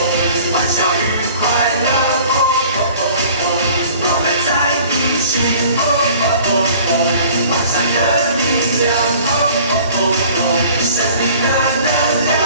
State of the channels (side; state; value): both; inverted; correlation -0.49